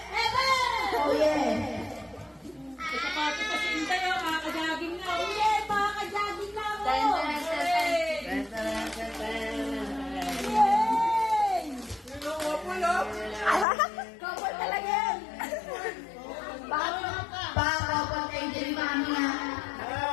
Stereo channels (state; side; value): drops out; right; at 13.7 s